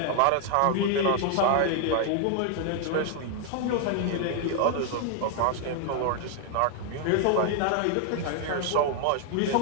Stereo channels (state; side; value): different; both; correlation 0.00